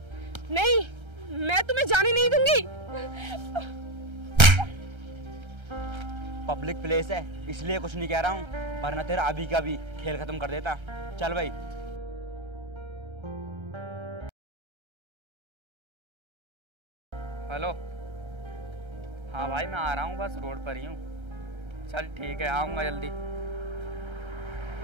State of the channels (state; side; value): late; left; 1.3 ms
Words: नहीं, मैं तुम्हें जाने नहीं दूंगी। पब्लिक प्लेस है इसलिए कुछ नहीं कह रहा हूँ, वरना तेरा अभी का भी खेल खत्म कर देता। चल भाई। हेलो, हाँ भाई मैं आ रहा हूँ, बस रोड पर ही हूँ। चल ठीक है, आऊँगा जल्दी।